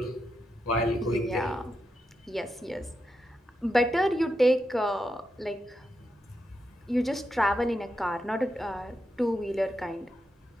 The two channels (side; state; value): both; normal; correlation 0.86